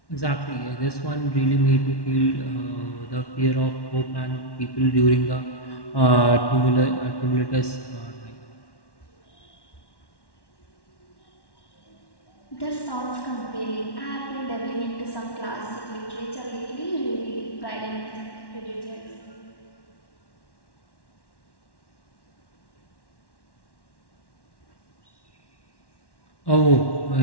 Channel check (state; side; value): late; right; 1.1 ms